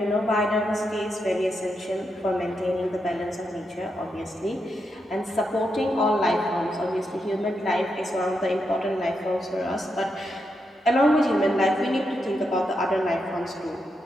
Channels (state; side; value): normal; both; correlation 0.84